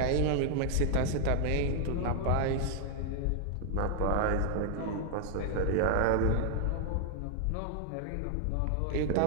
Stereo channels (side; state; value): both; different; correlation 0.00